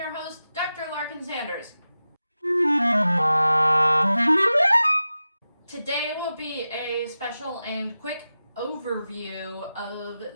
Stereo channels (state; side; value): inverted; both; correlation -0.93